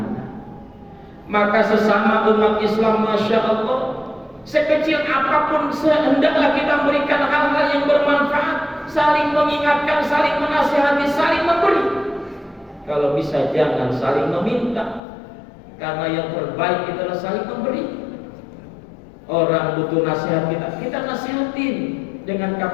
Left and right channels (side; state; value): right; drops out; at 15.0 s